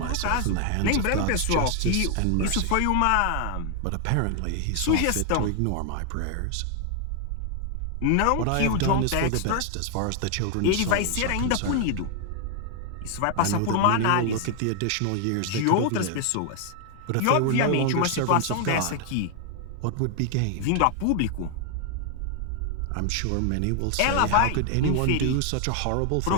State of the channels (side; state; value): both; different; correlation 0.00